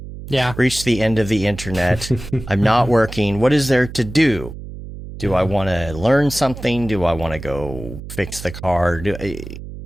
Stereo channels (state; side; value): noise; right; hum, 12 dB below the sound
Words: reached the end of the internet. I'm not working. What is there to do? Do I want to learn something? Do I want to go fix the car?